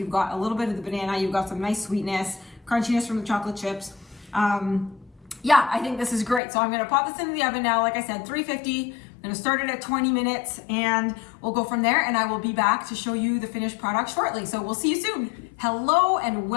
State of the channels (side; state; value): right; drops out; at 6.4 s